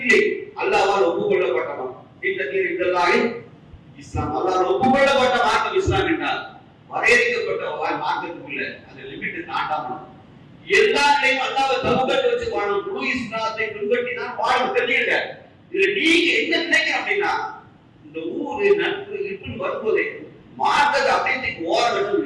அல்லாஹ்வால் ஒப்புக்கொள்ளப்பட்டவன். இஸ்லாம் அல்லாஹ்வால் ஒப்புக்கொள்ளப்பட்ட மார்க்கம் இஸ்லாம் என்றால் வரையறுக்கப்பட்ட மார்க்கத்துக்குள்ள அந்த லிமிட் தாண்டாம எல்லாத்தையும் அல்லாஹ்வை தவக்கல் வச்சு வாழணும். முழு இஸ்லாத்தை பின்பற்றினா வாழணும். தெரியுங்க. இதுல நீங்க என்ன நினைக்கிறீங்க அப்படின்னா இந்த ஊரு நட்பு இப்படின்னு வரும்போதே மார்க்கத்தை அப்படியே ஓரங்கட்டு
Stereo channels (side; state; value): both; identical; correlation 1.00